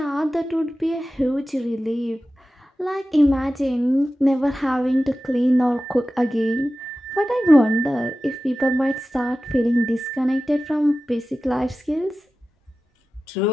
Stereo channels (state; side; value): normal; both; correlation 0.94